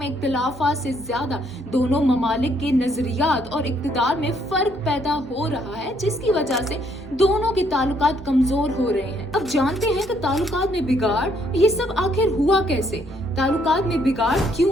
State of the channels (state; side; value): normal; both; correlation 0.69